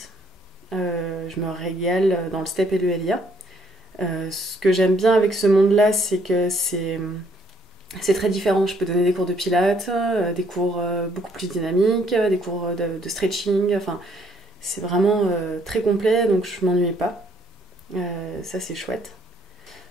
Je me régale dans le step et le LIA. Ce que j'aime bien avec ce monde-là, c'est que c'est très différent. Je peux donner des cours de pilates, des cours beaucoup plus dynamiques, des cours de stretching. Enfin, c'est vraiment très complet, donc je m'ennuie pas. Ça, c'est chouette.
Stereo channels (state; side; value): normal; both; correlation 0.66